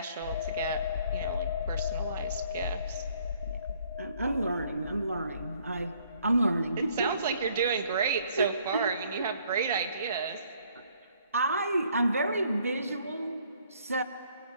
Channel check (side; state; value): both; inverted; correlation -0.63